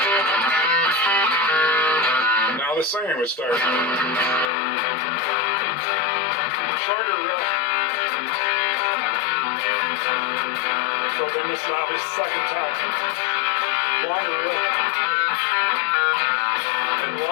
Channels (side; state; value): right; drops out; at 4.5 s